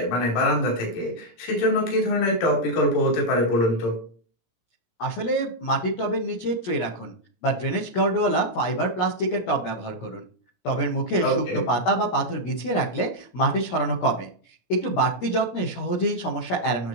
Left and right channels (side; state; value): right; late; 17 ms